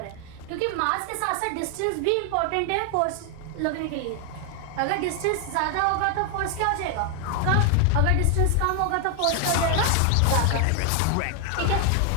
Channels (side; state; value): both; different; correlation 0.00